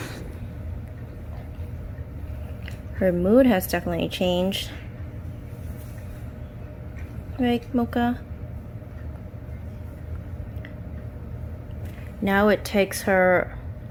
Her mood has definitely changed. Right, Mocha? Now it takes her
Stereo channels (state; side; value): identical; both; correlation 1.00